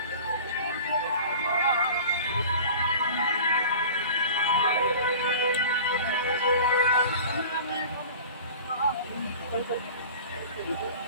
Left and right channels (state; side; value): inverted; both; correlation -0.40